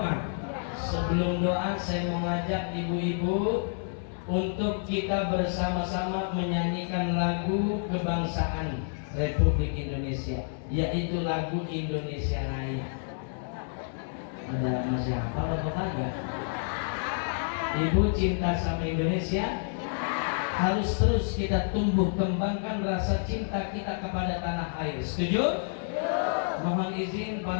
Sebelum doa saya mau ngajak ibu-ibu untuk kita bersama-sama menyanyikan lagu kebangsaan Republik Indonesia, yaitu lagu Indonesia Raya. Ada masih hafal atau kagak? Ibu cinta sama Indonesia? Harus terus kita tumbuh kembangkan rasa cinta kita kepada tanah air. Setuju? Mohon izin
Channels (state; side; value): silent; right; digital silence